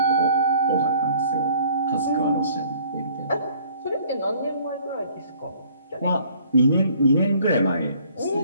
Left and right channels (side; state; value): both; inverted; correlation -0.57